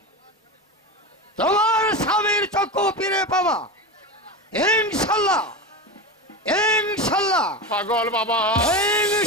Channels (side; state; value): both; normal; correlation 0.22